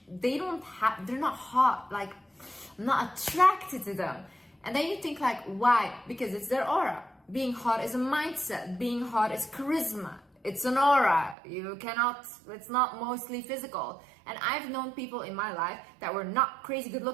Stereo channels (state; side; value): drops out; left; at 11.4 s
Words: They're not hot. Like, I'm not attracted to them. And then you think like, why? Because it's their aura. Being hot is a mindset. Being hot is charisma. It's an aura. It's not mostly physical. And I've known people in my life that were not crazy good